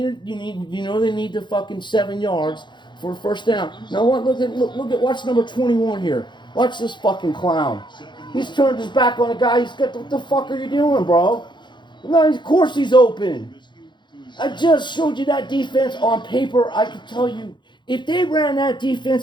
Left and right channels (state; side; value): late; right; 0.22 ms